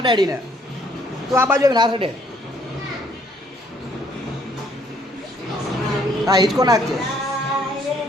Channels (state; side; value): normal; both; correlation 0.65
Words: અડાડીને તું આ બાજુ આવીને હાથ અડે. હા હિંચકો નાખજે.